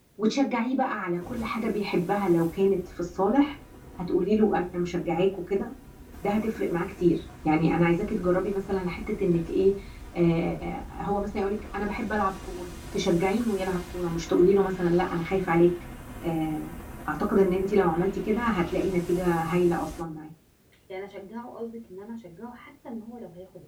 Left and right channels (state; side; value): identical; both; correlation 1.00